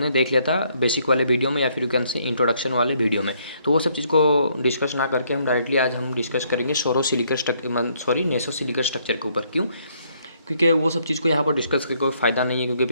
देख लिया था बेसिक वाले वीडियो में या फिर यू कैन से इंट्रोडक्शन वाले वीडियो में। तो वो सब चीज़ को डिस्कस ना करके हम डायरेक्टली आज हम डिस्कस करेंगे नेसो सिलिकेट स्ट्रक्चर के ऊपर। क्यों? क्योंकि वो सब चीज़ को यहाँ पर डिस्कस करके कोई फ़ायदा नहीं है, क्योंकि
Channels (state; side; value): inverted; both; correlation -0.69